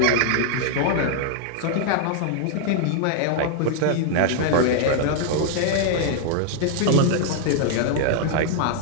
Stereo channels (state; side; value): different; both; correlation 0.00